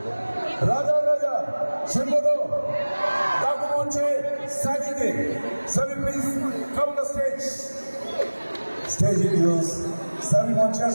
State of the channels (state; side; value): inverted; both; correlation -1.00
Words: রাজা রাজা শুনবো তো? ডাকু মঞ্চে সাজিদে, সবই please come the stage. Stage use সবই মঞ্চে